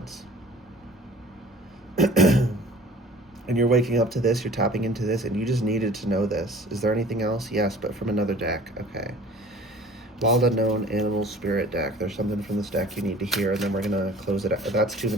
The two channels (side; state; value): both; normal; correlation 0.47